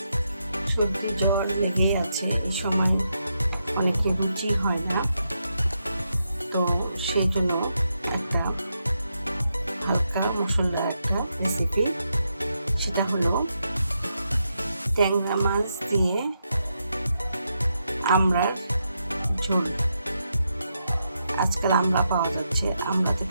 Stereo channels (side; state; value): both; inverted; correlation -0.83